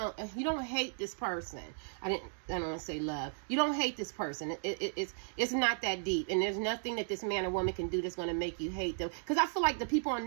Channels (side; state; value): left; silent; digital silence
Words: hate this person. I don't want to say love. You don't hate this person. It's not that deep, and there's nothing that this man or woman can do that's going to make you hate them. Because I feel like the people on